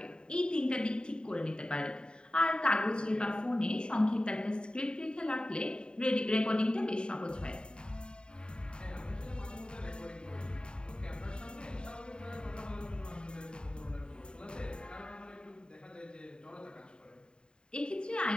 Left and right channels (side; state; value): right; late; 0.049 ms